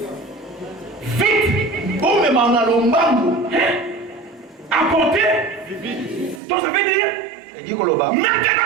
Vite. Bon, mema, on a l'ombango. Apporter. Donc ça veut dire. Elle dit que le bas.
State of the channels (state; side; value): drops out; left; at 6.4 s